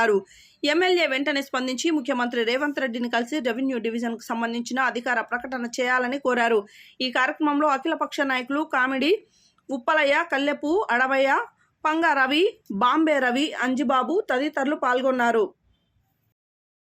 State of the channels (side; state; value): both; identical; correlation 1.00